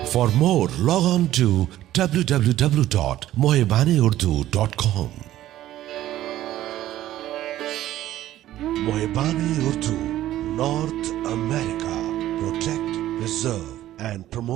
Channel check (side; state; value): left; quieter; 13.8 dB